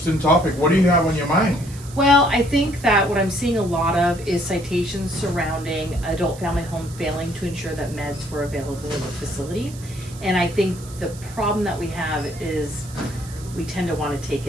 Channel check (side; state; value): right; noise; hiss, 18 dB below the sound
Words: topic. What do you have on your mind? Well, I think that what I'm seeing a lot of is citations surrounding adult family home failing to ensure that meds were available in the facility. And I think the problem that we have is we tend to want to take